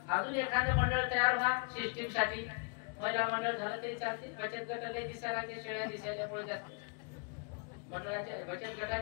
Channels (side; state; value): right; quieter; 36.0 dB